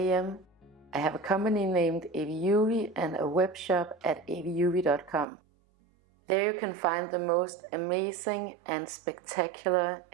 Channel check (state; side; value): drops out; left; at 5.2 s